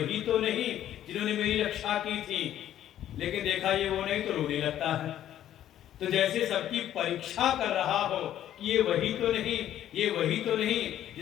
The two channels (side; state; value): right; quieter; 11.7 dB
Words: तो नहीं जिन्होंने मेरी रक्षा की थी। लेकिन देखा ये वो नहीं तो रोने लगता है। तो जैसे सबकी परीक्षा कर रहा हो कि ये वही तो नहीं, ये वही तो नहीं